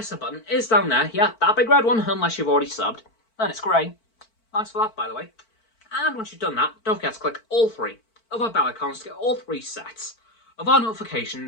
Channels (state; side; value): late; right; 4.5 ms